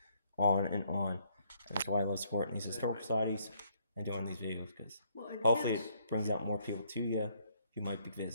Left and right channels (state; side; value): inverted; both; correlation -0.69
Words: on and on. And that's why I love supporting these historical societies and doing these videos, because Well, and hopefully kids, it brings out more people to you who might be